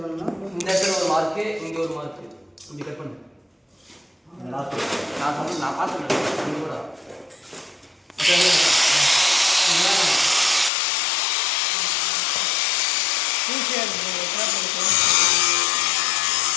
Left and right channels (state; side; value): drops out; right; at 10.7 s